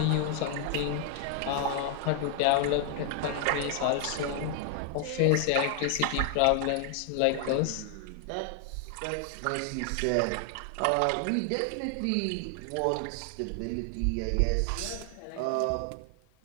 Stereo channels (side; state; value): both; different; correlation 0.00